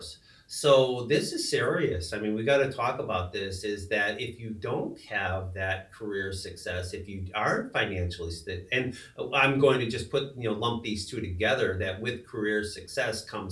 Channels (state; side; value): identical; both; correlation 1.00